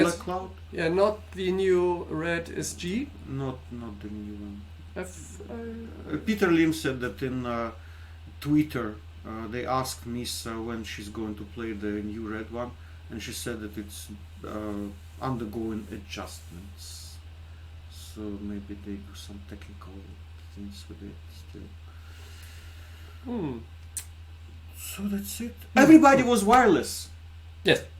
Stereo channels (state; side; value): identical; both; correlation 1.00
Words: Cloud. Yeah, not the new Red SG. Not the new one. Peter Lim said that in Twitter they asked Misa when she's going to play the new red one, and she said that it's undergoing adjustments. So maybe they do some technical things with it still. So that's it. Everybody was wireless. Yes.